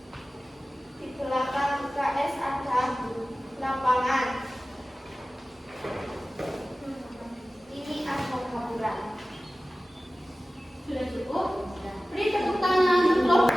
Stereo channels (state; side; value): normal; both; correlation 0.96